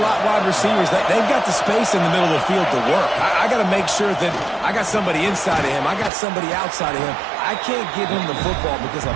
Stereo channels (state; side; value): drops out; left; at 6.1 s